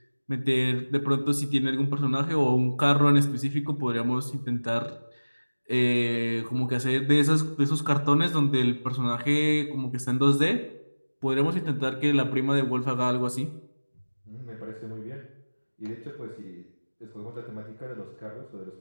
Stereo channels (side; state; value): both; inverted; correlation -1.00